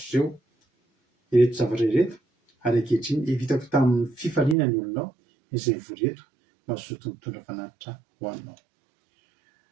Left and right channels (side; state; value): left; drops out; at 4.5 s